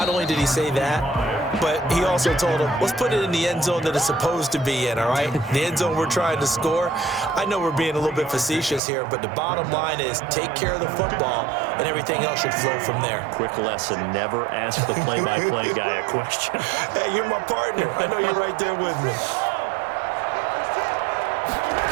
only did he say that, but he also told him, let's put it in the end zone that it's supposed to be in, all right? The end zone we're trying to score. I know we're being a little bit facetious here, but the bottom line is take care of the football, and everything else should flow from there. Quick lesson, never ask the play-by-play guy a question. Hey, you're my partner. I know you're right there with me.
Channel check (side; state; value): left; drops out; at 8.8 s